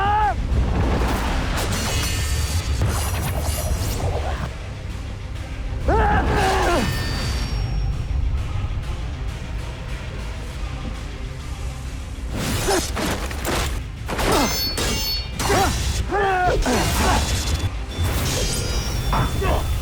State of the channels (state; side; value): identical; both; correlation 1.00